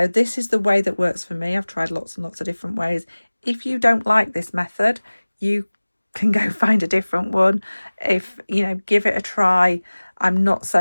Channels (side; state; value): both; inverted; correlation -1.00